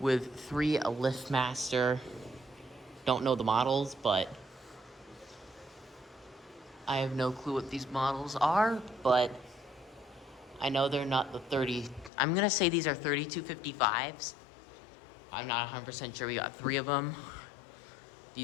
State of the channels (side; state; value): right; drops out; at 12.1 s